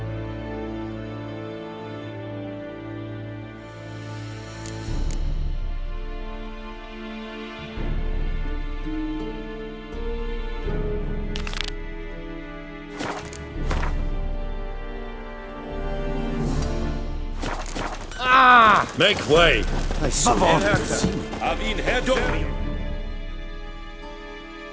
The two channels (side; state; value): both; identical; correlation 1.00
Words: Make way! I saw